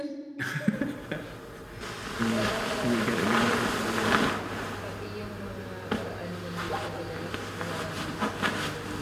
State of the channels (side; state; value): both; identical; correlation 1.00